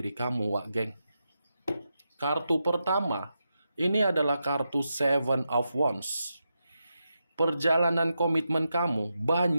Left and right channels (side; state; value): both; inverted; correlation -0.87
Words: kamu, Wak Geng. Kartu pertama, ini adalah kartu Seven of Wands. Perjalanan komitmen kamu